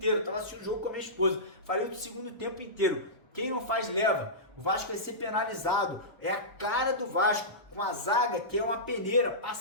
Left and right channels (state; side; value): normal; both; correlation -0.18